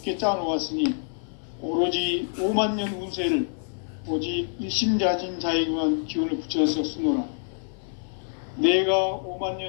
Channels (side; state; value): right; silent; 56 dB below the other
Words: 짜놓았으니 오로지 5만 년 운세를 오직 일심자진 자에게만 기운을 붙여서 쓰노라. 내가 5만